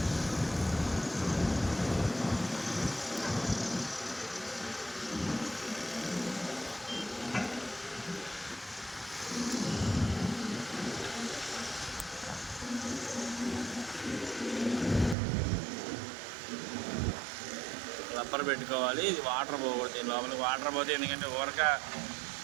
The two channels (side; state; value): left; drops out; at 15.2 s